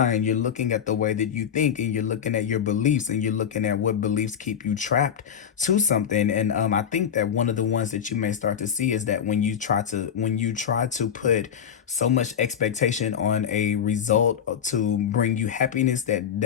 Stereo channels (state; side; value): quieter; right; 8.3 dB